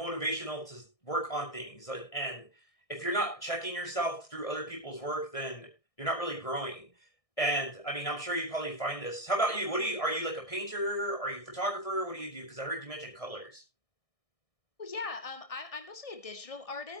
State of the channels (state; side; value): late; right; 1.6 ms